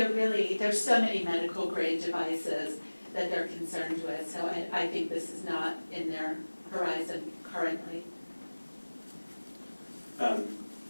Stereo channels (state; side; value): inverted; both; correlation -1.00